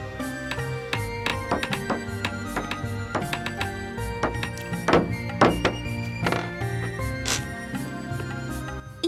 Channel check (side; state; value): both; identical; correlation 1.00